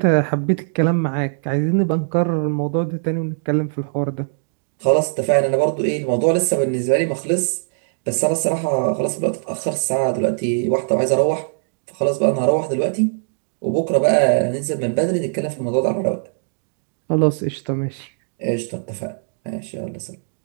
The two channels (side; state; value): left; silent; digital silence